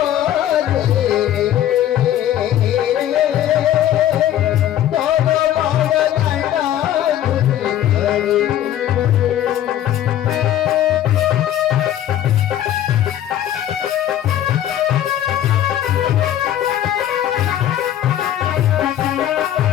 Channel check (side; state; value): right; quieter; 11.7 dB